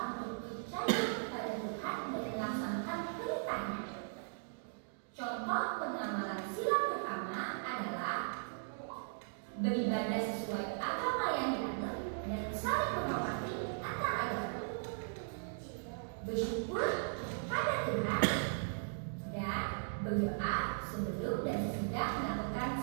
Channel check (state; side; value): silent; left; digital silence